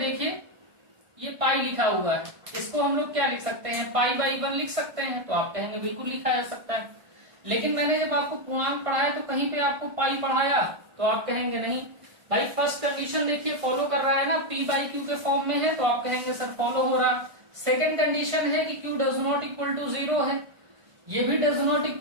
ये पाई लिखा हुआ है, इसको हम लोग क्या लिख सकते हैं? π/1 लिख सकते हैं। तो आप कहेंगे बिल्कुल लिखा जा सकता है, लेकिन मैंने जब आपको पूर्णांक पढ़ाया तो कहीं पे आपको पाई पढ़ाया, तो आप कहेंगे नहीं भाई। फर्स्ट कंडीशन देखिए फॉलो कर रहा है ना, p/q के फॉर्म में है, तो आप कहेंगे सर फॉलो हो रहा। सेकंड कंडीशन है कि q does not equal to 0 है, ये भी डज नॉट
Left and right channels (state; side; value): late; left; 1.5 ms